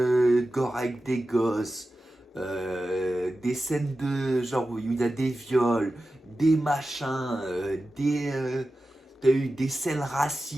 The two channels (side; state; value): both; normal; correlation 0.93